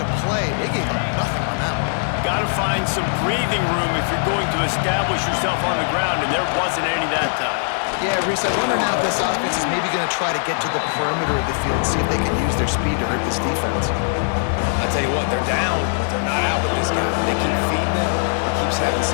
play. They gave up nothing on that one. Got to find some breathing room if you're going to establish yourself on the ground, and there wasn't any that time. Yeah, Reese, I wonder now if this offense is maybe going to try to get to the perimeter of the field and see if they can use their speed to hurt this defense. I tell you what, they're down, but they're not out with this guy. They keep feeding him. He keeps having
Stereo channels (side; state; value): right; silent; digital silence